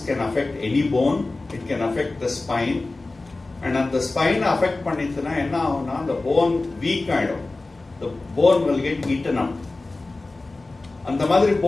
can affect any bone, it can affect the spine, and at the spine affect பண்ணிச்சுனா என்ன ஆகும்னா the bone weak ஆயிடும். The bone will get eaten up. அந்த மாதிரி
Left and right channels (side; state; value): right; quieter; 3.2 dB